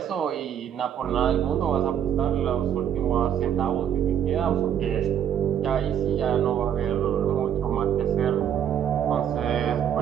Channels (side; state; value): left; quieter; 9.3 dB